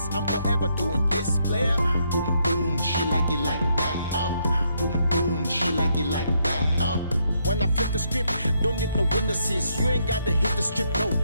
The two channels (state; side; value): inverted; both; correlation -0.75